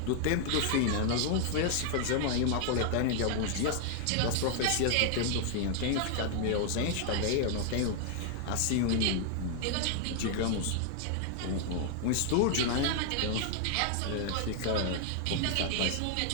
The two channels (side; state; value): both; different; correlation 0.00